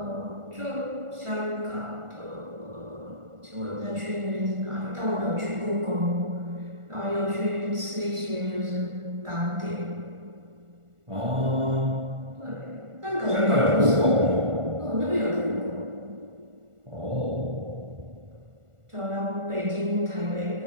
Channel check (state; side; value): late; left; 1.4 ms